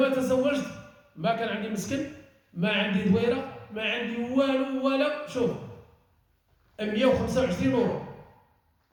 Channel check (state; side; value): identical; both; correlation 1.00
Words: تزوجت ما كان عندي مسكن، ما عندي دويرة، ما عندي والو ولا شوف 125 يورو